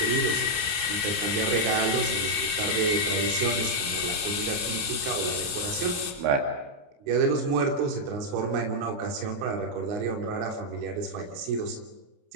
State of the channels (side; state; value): left; late; 29 ms